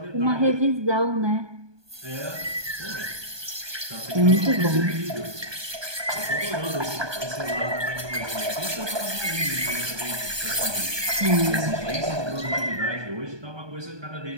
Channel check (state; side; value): late; left; 1.2 ms